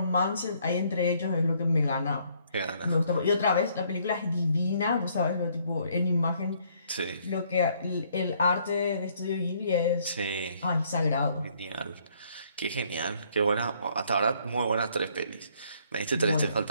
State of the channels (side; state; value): both; inverted; correlation -0.66